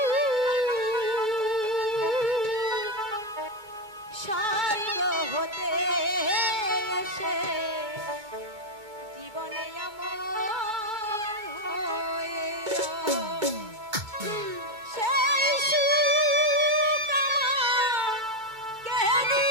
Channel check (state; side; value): late; left; 2.3 ms